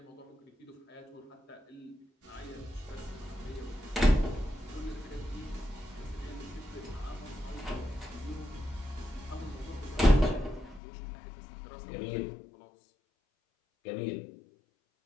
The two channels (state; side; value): drops out; right; at 10.8 s